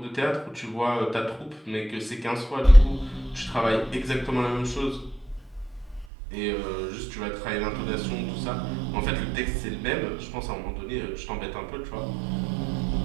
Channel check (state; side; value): drops out; left; at 6.1 s